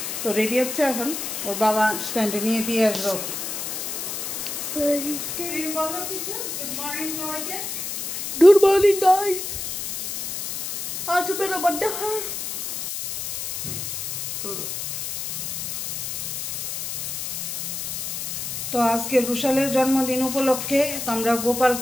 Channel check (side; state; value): left; noise; hiss, 4 dB below the sound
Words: তো রেডি হচ্ছে, এখন ওর বাবা স্ট্যান্ডে নিয়ে দিয়ে আসবে ওকে। गुड मॉर्निंग गाइस, आज मेरा बर्थडे है। তো আজকে রুশালের জন্মদিন উপলক্ষে তো আমরা